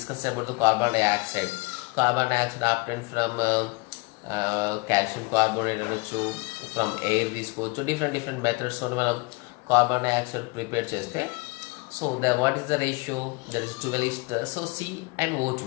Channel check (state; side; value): quieter; right; 27.4 dB